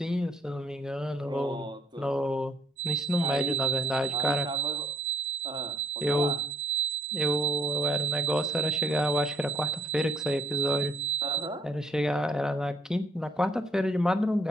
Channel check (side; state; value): both; normal; correlation 0.69